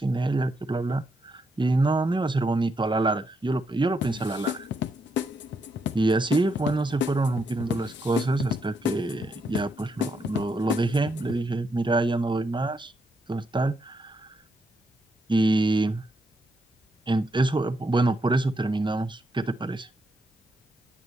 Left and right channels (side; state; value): both; normal; correlation 0.79